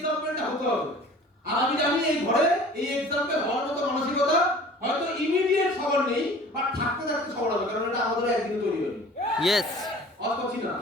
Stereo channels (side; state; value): both; normal; correlation 0.46